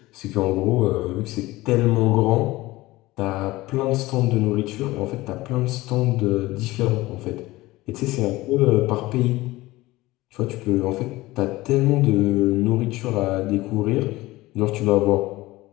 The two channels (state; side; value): quieter; right; 19.0 dB